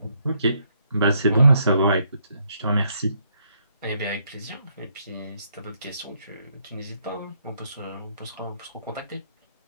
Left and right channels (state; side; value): inverted; both; correlation -0.73